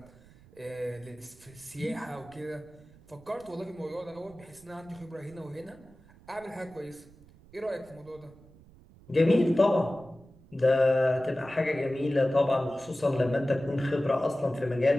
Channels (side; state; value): right; noise; rumble, 24 dB below the sound